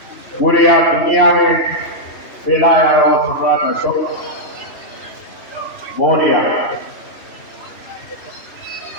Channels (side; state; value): right; late; 2.9 ms